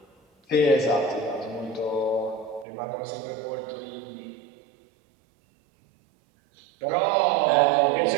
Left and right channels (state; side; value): drops out; left; at 2.7 s